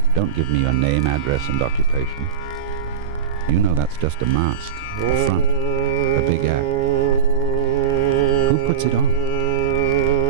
Don't give me your name, address, and occupation. You know that's just a mask, a front, a big act. Who puts it on?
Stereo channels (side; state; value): left; quieter; 7.5 dB